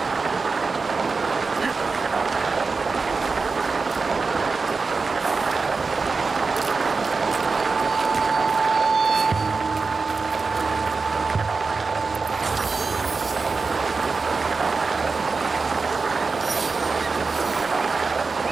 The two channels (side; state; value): left; quieter; 4.4 dB